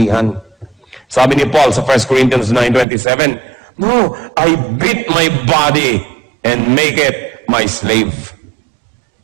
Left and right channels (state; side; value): drops out; left; at 2.9 s